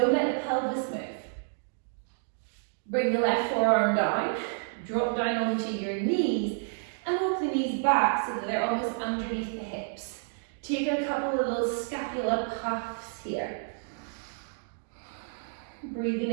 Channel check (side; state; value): left; silent; digital silence